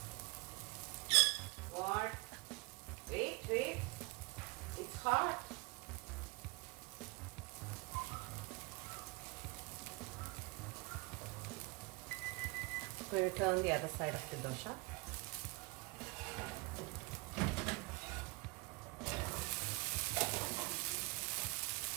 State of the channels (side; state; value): left; quieter; 26.1 dB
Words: What? Wait. It's hot. I'm going to turn the other side of the dosa.